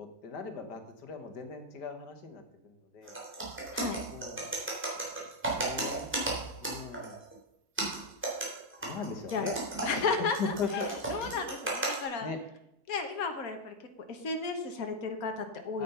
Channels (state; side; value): normal; both; correlation 0.00